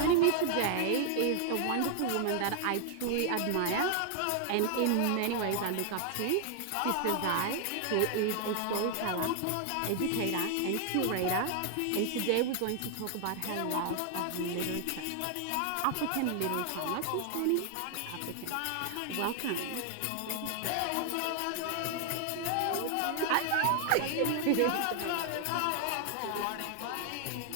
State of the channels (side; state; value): both; different; correlation 0.00